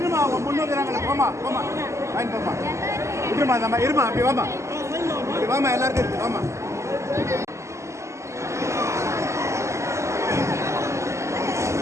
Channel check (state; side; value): late; left; 0.14 ms